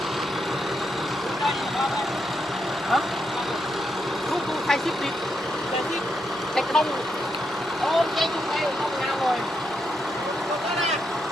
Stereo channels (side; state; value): both; normal; correlation 0.81